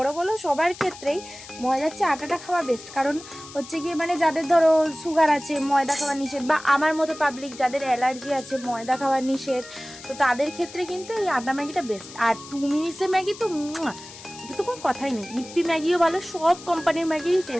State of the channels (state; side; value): noise; left; hiss, 16 dB below the sound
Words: বলো সবার ক্ষেত্রেই ময়দার চেয়ে আটাটা খাওয়া বেস্ট। কারণ হচ্ছে গিয়ে মানে যাদের ধরো সুগার আছে, ময়দা খাওয়া নিষেধ, বা আমার মতো পাবলিক যাদের অ্যালার্জি আছে, ময়দা খাওয়া নিষেধ, তো তাদের ক্ষেত্রে কিন্তু এই আটা ম্যাগিটা বেস্ট। আর 2 মিনিটসের ম্যাগি তো তো কোনো কথাই নেই। ইপি ম্যাগিও ভালো, সব কোম্পানির ম্যাগিরই